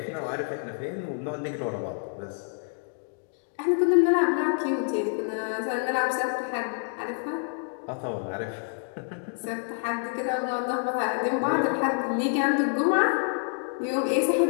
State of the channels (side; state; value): right; silent; 60 dB below the other